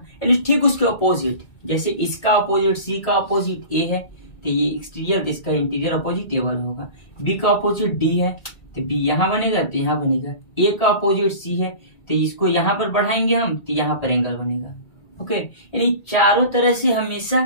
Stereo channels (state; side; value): late; right; 2.0 ms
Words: यानी ठीक उसके अपोजिट, जैसे इसका अपोजिट सी का अपोजिट ए है तो ये एक्सटीरियर, इसका इंटीरियर अपोजिट ए वाला होगा। बी का अपोजिट डी है तो बी यहाँ बनेगा तो यहाँ बनेगा, ए का अपोजिट सी है तो इसको यहाँ पर बढ़ाएंगे हम तो यहाँ पर एंगल बनेगा। ओके, यानी चारों तरह से